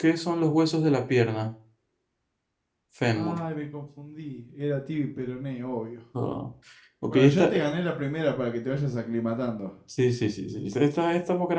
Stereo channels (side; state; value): both; identical; correlation 1.00